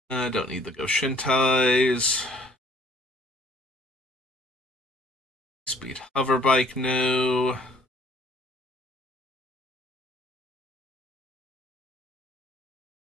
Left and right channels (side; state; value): both; normal; correlation 0.58